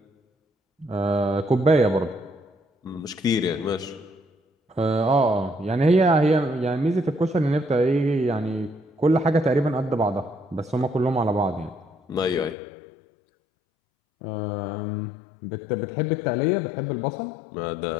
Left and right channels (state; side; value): drops out; right; at 12.6 s